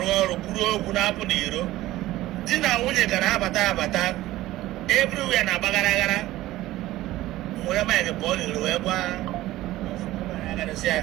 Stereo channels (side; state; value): left; quieter; 16.2 dB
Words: Puro, Punapodiro, Dina Winnie Carabata, everywhere in Abagara, where am I the ball in Lueba? I gotta say,